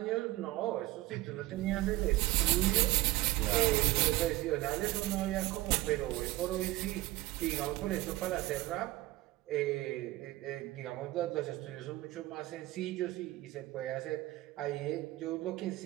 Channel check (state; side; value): quieter; left; 18.1 dB